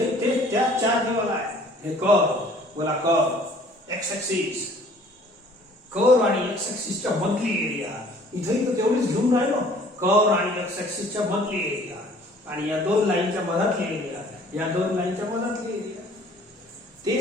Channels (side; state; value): both; normal; correlation 0.54